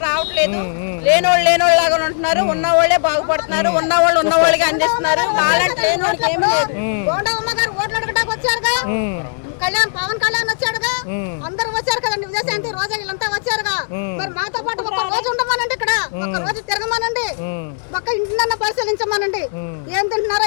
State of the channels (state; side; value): silent; right; digital silence